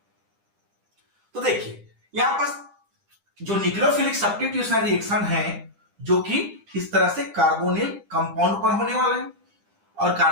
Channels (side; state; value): left; late; 9.9 ms